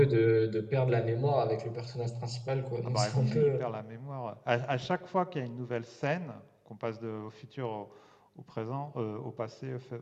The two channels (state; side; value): identical; both; correlation 1.00